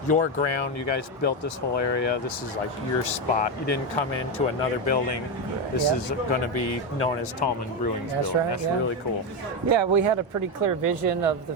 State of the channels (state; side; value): normal; both; correlation 0.10